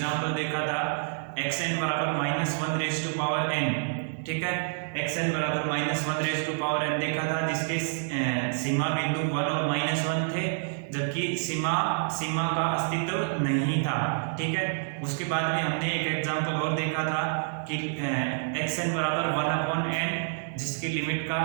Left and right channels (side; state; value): left; silent; digital silence